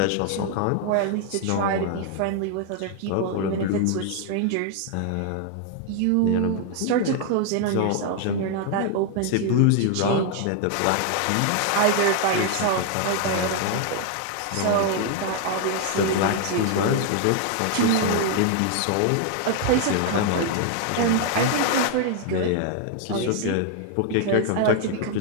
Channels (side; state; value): both; different; correlation 0.00